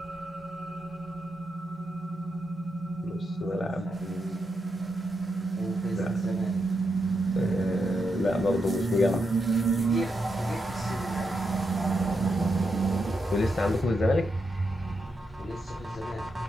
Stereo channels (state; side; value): normal; both; correlation 0.84